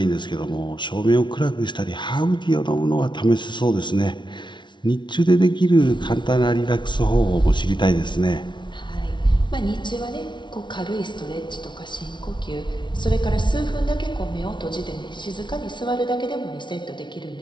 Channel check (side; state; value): right; late; 0.23 ms